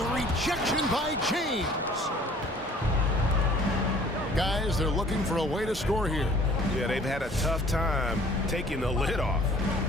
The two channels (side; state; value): both; normal; correlation 0.53